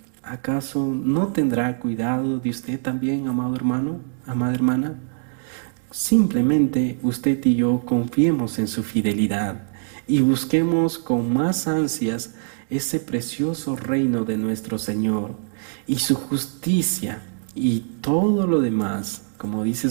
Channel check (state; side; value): silent; left; digital silence